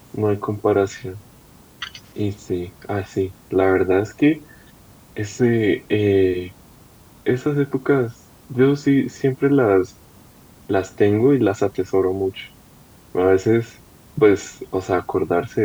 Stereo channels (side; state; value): both; identical; correlation 1.00